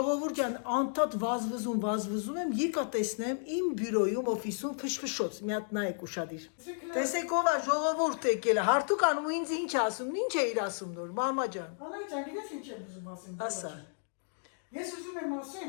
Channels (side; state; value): right; silent; digital silence